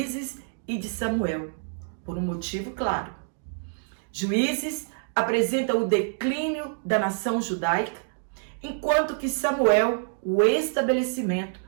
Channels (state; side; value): silent; left; digital silence